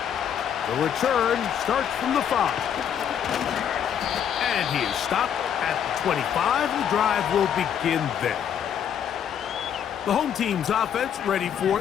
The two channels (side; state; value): right; quieter; 8.8 dB